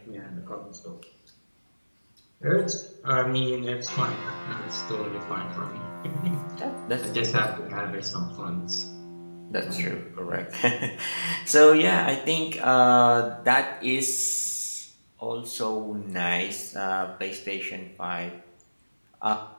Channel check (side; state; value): both; inverted; correlation -1.00